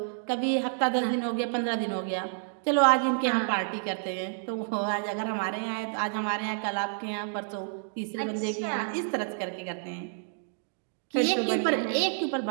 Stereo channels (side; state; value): left; silent; digital silence